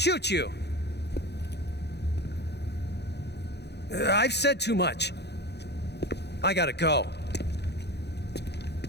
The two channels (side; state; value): right; late; 0.49 ms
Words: you. I've said too much. I gotta go.